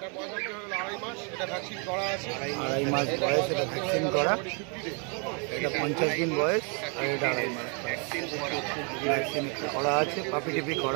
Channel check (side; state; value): left; quieter; 36.6 dB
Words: 2.5 মাস বয়স, এটা ভ্যাকসিন করা। এটা 50 দিন বয়স, আর এটা 2.5 মাস ভ্যাকসিন করা আছে, পাপি টিপি